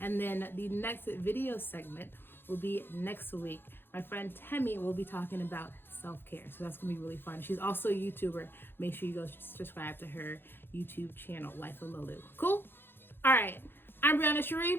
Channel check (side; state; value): right; late; 0.10 ms